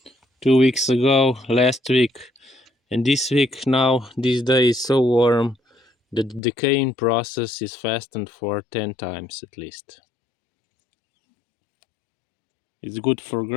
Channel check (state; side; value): drops out; right; at 6.4 s